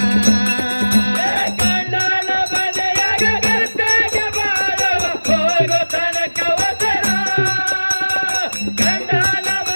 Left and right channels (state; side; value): inverted; both; correlation -1.00